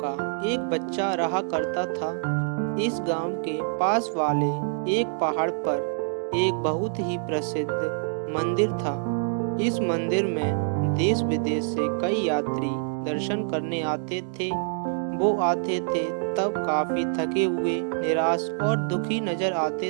एक बच्चा रहा करता था। इस गांव के पास वाले एक पहाड़ पर एक बहुत ही प्रसिद्ध मंदिर था। इस मंदिर में देश विदेश से कई यात्री दर्शन करने आते थे। वो आते थे तब काफी थके हुए, निराश और दुखी नजर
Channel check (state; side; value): silent; left; digital silence